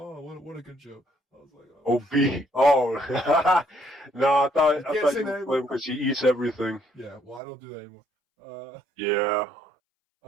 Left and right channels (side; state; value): left; drops out; at 7.4 s